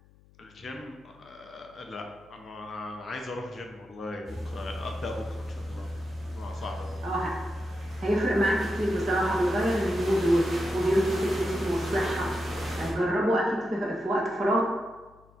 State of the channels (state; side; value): noise; left; hum, 27 dB below the sound